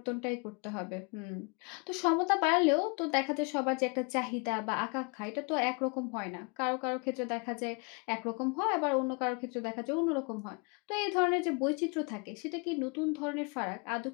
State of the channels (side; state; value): right; quieter; 32.2 dB